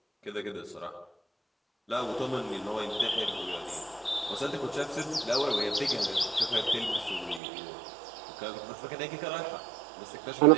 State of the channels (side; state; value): left; drops out; at 7.4 s